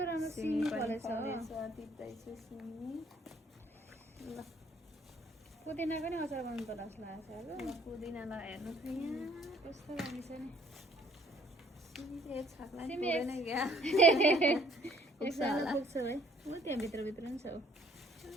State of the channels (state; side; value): normal; both; correlation 0.61